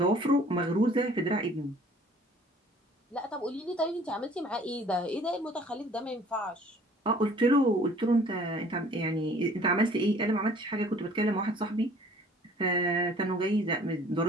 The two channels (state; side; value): normal; both; correlation 0.53